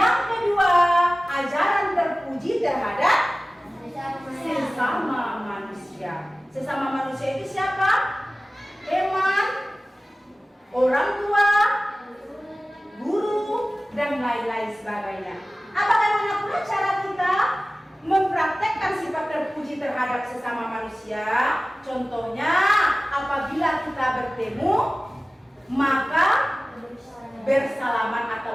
kedua, ajaran terpuji terhadap sesama manusia. Sesama manusia itu siapa? Teman, orang tua, guru, dan lain-lain sebagainya. Bagaimana pula cara kita mempraktekkan sifat terpuji terhadap sesama manusia? Contohnya, apabila kita bertemu, maka bersalaman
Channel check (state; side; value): normal; both; correlation 0.97